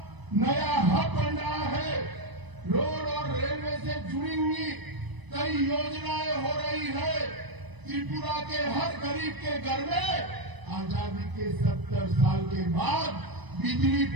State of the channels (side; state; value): left; late; 1.0 ms